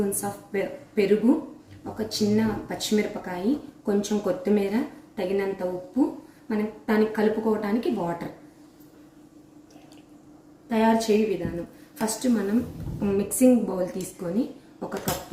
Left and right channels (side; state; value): both; identical; correlation 1.00